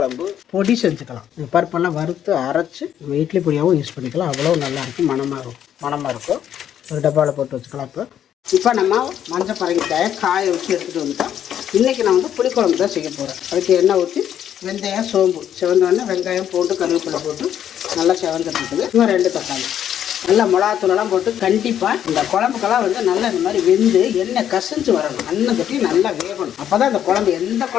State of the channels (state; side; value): quieter; right; 10.0 dB